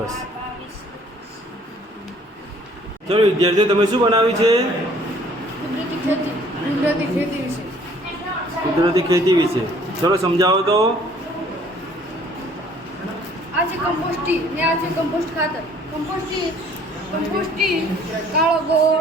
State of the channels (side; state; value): both; normal; correlation 0.57